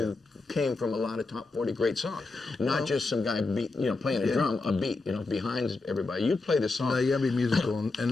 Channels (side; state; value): right; quieter; 3.6 dB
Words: came from a lot of top 40 great songs. Not just some guy playing a drum, a beat, behind everybody. You play the song. No, you gotta be musical,